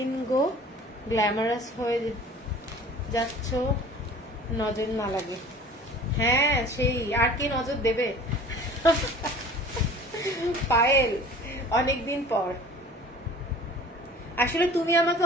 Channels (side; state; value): both; normal; correlation 0.45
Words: গো গ্ল্যামারাস হয়ে যাচ্ছ, নজর না লাগে। হ্যাঁ সেই, আর কে নজর দেবে পায়েল, অনেকদিন পর। আসলে তুমি আমাকে